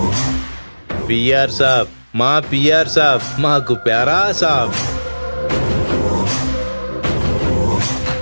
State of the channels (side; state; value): both; inverted; correlation -1.00